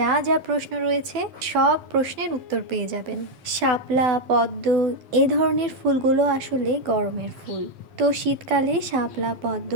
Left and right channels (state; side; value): late; left; 12 ms